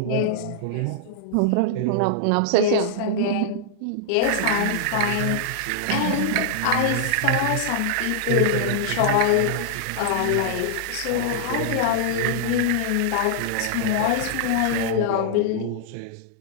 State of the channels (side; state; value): both; different; correlation -0.01